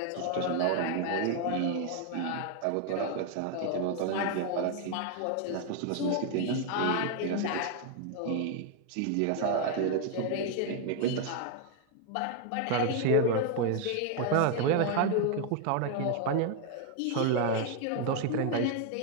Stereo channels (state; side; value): different; both; correlation 0.00